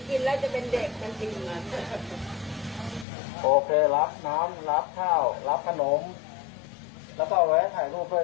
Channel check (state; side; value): drops out; right; at 3.1 s